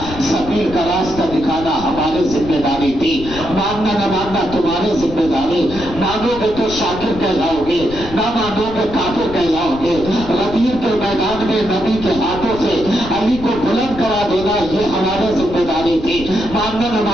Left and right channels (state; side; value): noise; left; rumble, 13 dB below the sound